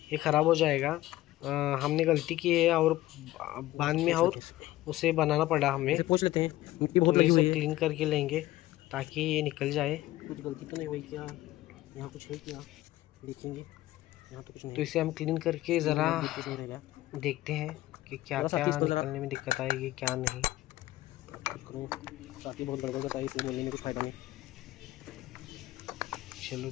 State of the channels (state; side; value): quieter; right; 16.2 dB